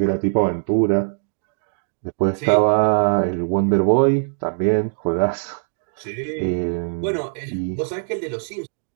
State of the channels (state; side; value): silent; left; digital silence